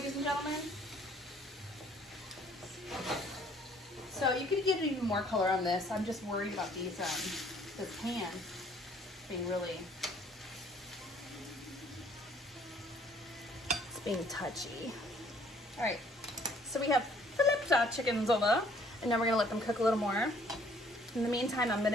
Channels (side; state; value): both; normal; correlation 0.60